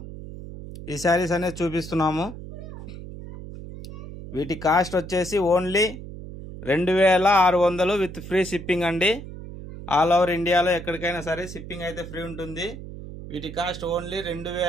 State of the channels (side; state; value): right; noise; hum, 12 dB below the sound